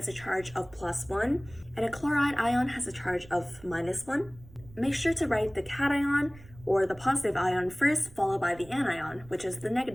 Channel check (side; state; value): right; noise; rumble, 21 dB below the sound